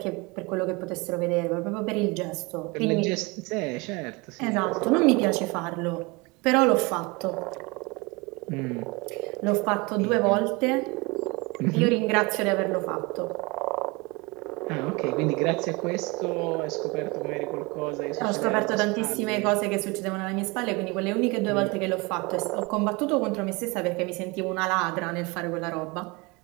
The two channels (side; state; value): left; quieter; 26.0 dB